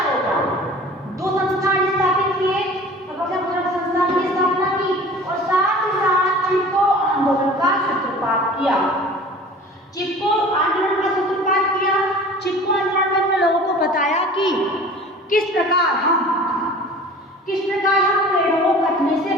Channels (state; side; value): normal; both; correlation 0.43